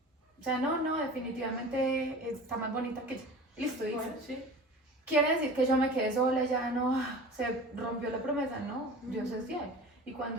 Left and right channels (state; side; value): normal; both; correlation 0.38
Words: O sea, no, definitivamente está más bonita que yo. Listo, dice. Bueno, sí. ¿Quiere decir que yo me quedé sola y ya no, se rompió la promesa? No, Dios es fiel. Y